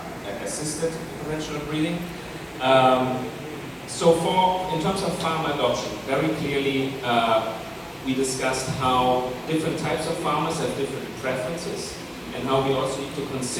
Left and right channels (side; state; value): both; identical; correlation 1.00